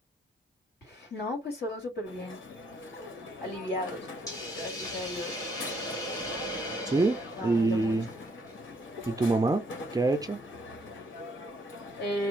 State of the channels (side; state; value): both; normal; correlation 0.70